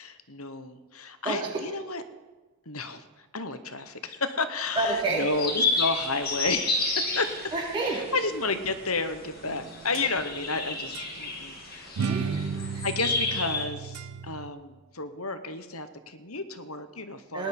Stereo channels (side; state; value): both; normal; correlation -0.11